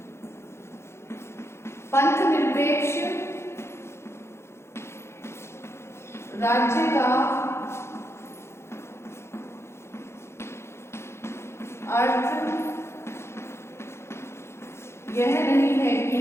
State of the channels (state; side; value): late; right; 0.13 ms